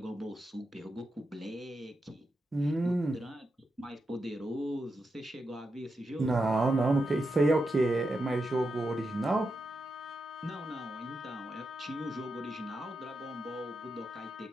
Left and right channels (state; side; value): normal; both; correlation 0.87